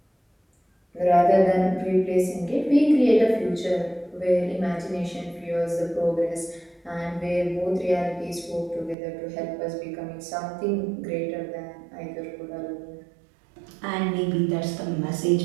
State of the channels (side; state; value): left; drops out; at 9.0 s